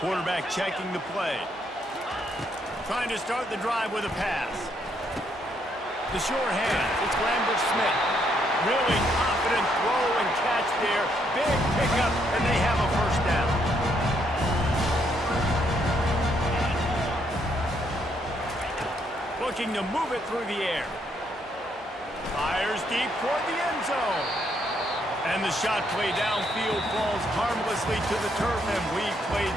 checking the play. Trying to start the drive with a pass. The sure hands. It's Lambert-Smith. Really confident throw and catch there. Big pickup, and they have a first down. Looking to move it through the air. Fires deep toward the end zone. And the shot play downfield falls harmlessly to the turf, and we've played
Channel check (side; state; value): both; normal; correlation 0.73